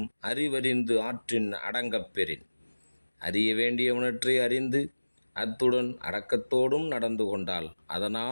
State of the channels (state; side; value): inverted; both; correlation -1.00